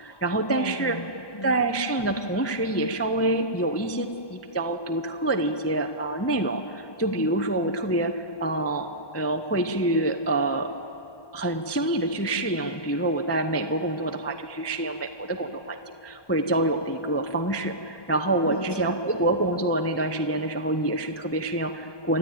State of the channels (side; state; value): right; late; 1.2 ms